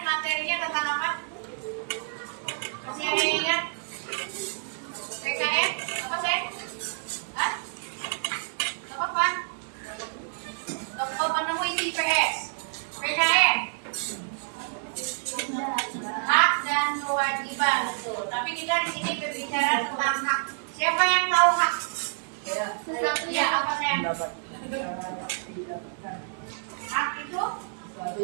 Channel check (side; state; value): left; silent; digital silence